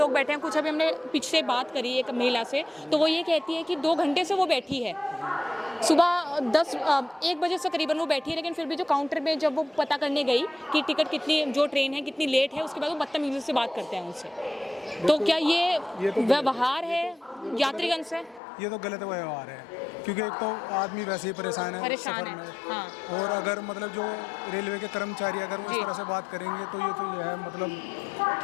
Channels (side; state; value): right; drops out; at 18.4 s